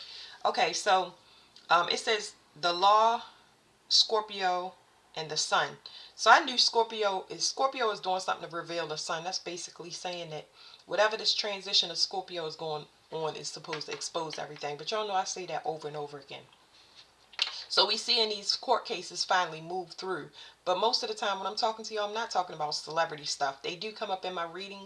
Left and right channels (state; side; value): identical; both; correlation 1.00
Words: Okay, so it says the law, Scorpio, and the sun. So I knew Scorpio is doing something to reveal the sun. That's basically saying that whatever this transition of Scorpio is going on is supposed to expose everything. But y'all know I say that over and over again. So we see in these court cases finally move through. But most of the time when I'm talking to you, I'm not talking about celebrity stuff. They do come up in my